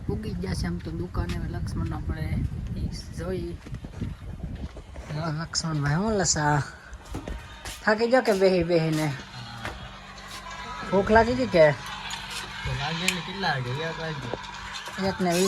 પૂગી ગયા છે આમ તો દુકાને. લક્ષ્મણ આપણે જોઈ. લક્ષ્મણભાઈ હું લસા થાકી જાઓ કે બેહીને? ભૂખ લાગી ગઈ કે? કેટલા વાગે?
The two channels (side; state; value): both; identical; correlation 1.00